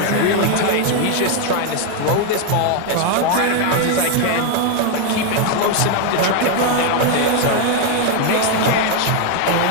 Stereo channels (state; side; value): different; both; correlation 0.01